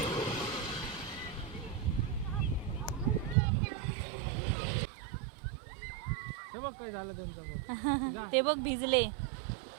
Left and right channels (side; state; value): left; drops out; at 3.4 s